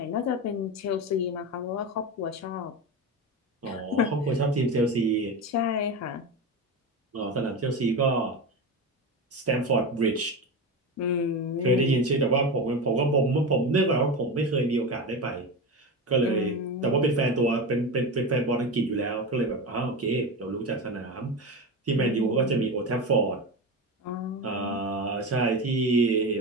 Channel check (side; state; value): both; normal; correlation 0.21